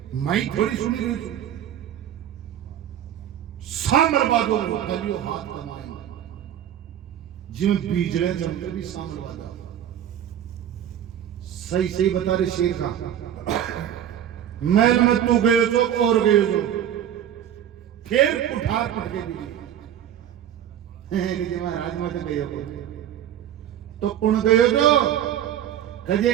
मैं थोड़ी सुनी रही हूं सामर बादो कलियो हाथ कमाए जिम बीजले जमते भी सामर बादा सही सही बता रहे शेर का। महल में तू गयो जो और गयो जो फिर कुठार पटके भी कि महाराज मत गयो तो कौन गयो जो कजे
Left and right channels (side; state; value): left; quieter; 10.5 dB